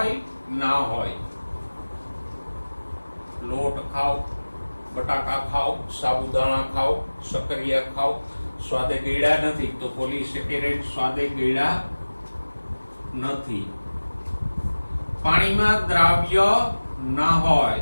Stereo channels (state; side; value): inverted; both; correlation -1.00